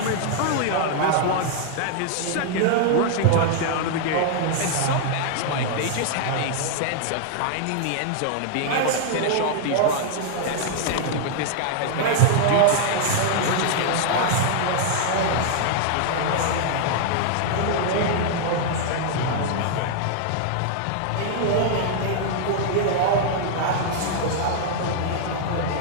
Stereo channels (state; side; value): different; both; correlation -0.01